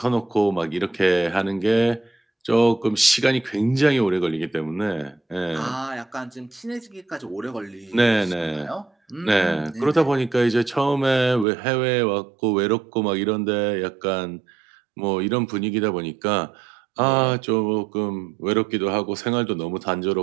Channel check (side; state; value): left; drops out; at 11.5 s